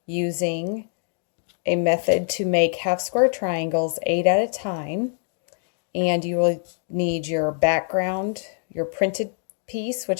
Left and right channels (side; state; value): right; silent; digital silence